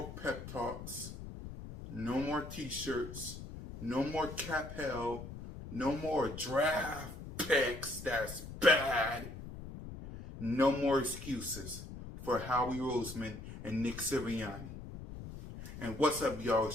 pep talks. No more t-shirts. No more cap hell. No more draft picks. That's bad. No more excuses for Howie Roseman and Nick Sirianni. And what's up, y'all?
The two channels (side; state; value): left; noise; rumble, 11 dB below the sound